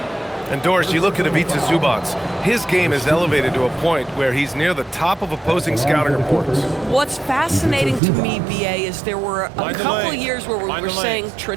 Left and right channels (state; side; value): drops out; left; at 8.0 s